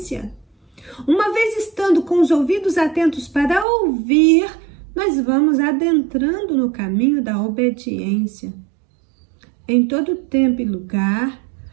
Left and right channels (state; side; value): drops out; left; at 3.7 s